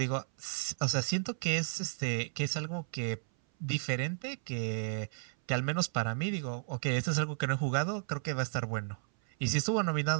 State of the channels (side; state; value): left; silent; 55 dB below the other